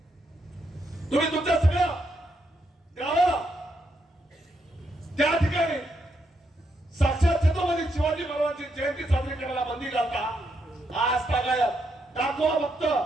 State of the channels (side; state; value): both; normal; correlation 0.79